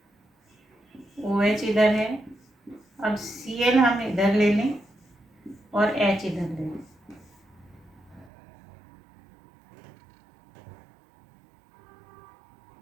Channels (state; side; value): drops out; left; at 8.3 s